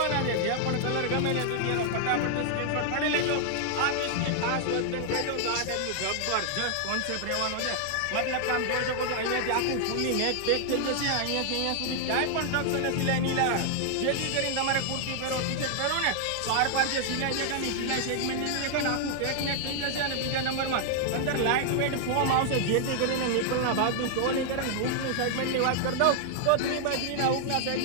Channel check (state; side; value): different; both; correlation 0.00